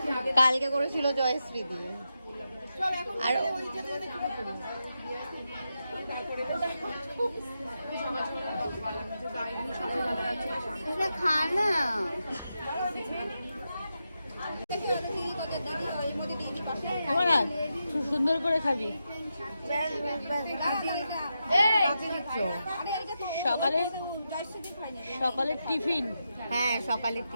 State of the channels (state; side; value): inverted; both; correlation -0.87